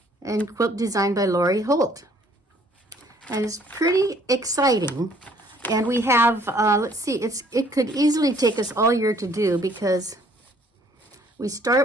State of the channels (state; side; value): normal; both; correlation 0.61